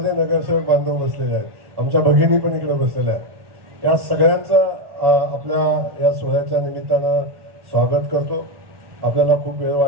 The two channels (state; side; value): late; left; 1.4 ms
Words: नगरसेवक बांधव बसलेले आहेत. आमच्या भगिनी पण इकडे बसलेल्या आहेत. या सगळ्यांचं आपल्या या सोहळ्याच्या निमित्तानं स्वागत करतो. आपल्याला खूप वेळ